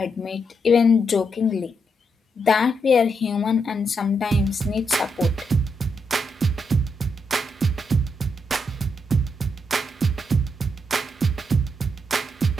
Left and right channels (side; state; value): both; normal; correlation 0.80